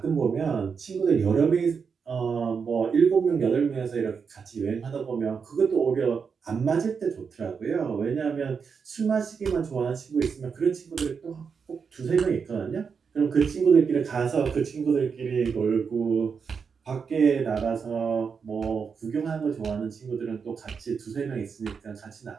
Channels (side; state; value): left; quieter; 5.9 dB